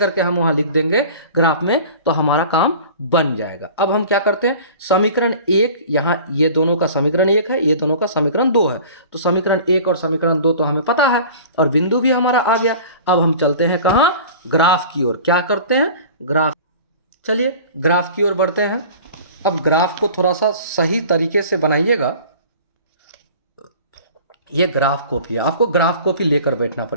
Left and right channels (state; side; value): inverted; both; correlation -0.42